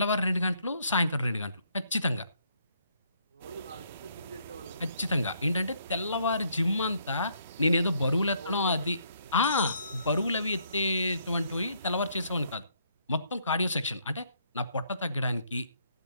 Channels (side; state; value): both; inverted; correlation -0.70